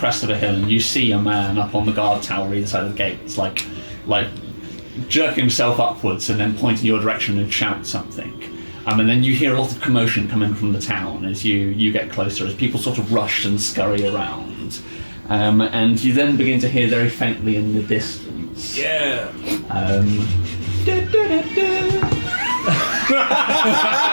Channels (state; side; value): inverted; both; correlation -1.00